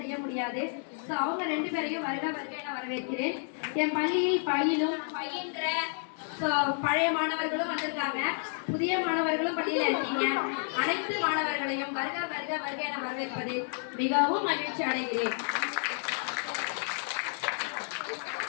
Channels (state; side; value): silent; right; 57 dB below the other